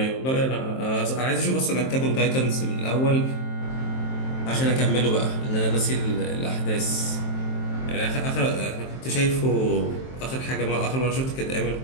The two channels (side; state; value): right; late; 23 ms